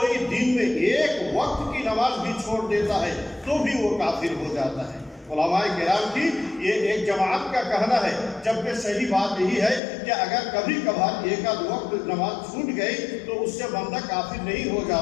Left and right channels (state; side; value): drops out; right; at 9.8 s